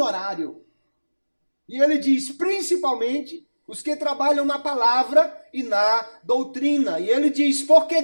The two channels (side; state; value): both; inverted; correlation -1.00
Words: E ele diz, principalmente, os que trabalham na palavra e na doutrina. E ele diz, porque